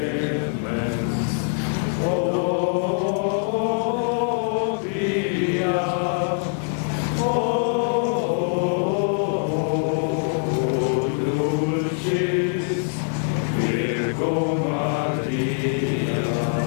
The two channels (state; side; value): silent; right; 63 dB below the other